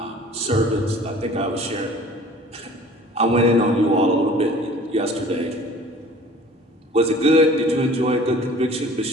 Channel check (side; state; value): both; normal; correlation 0.47